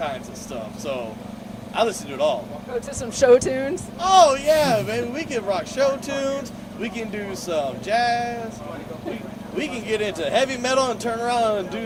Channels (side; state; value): both; identical; correlation 1.00